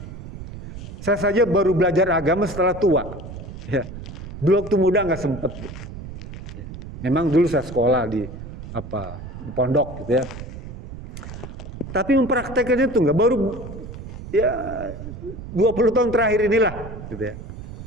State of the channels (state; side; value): noise; right; rumble, 11 dB below the sound